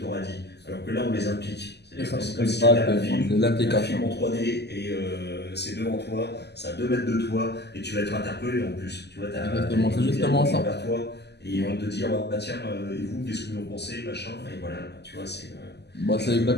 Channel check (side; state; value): right; late; 0.49 ms